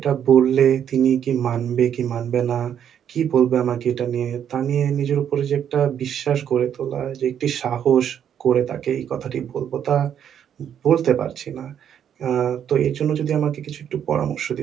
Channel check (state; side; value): quieter; left; 9.1 dB